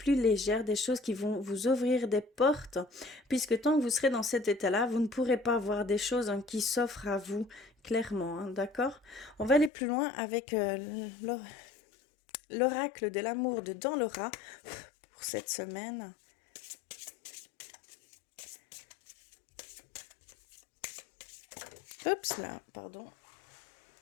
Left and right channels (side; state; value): right; drops out; at 9.7 s